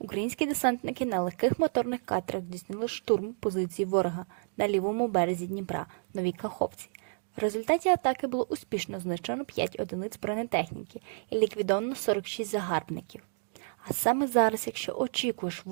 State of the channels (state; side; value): silent; left; digital silence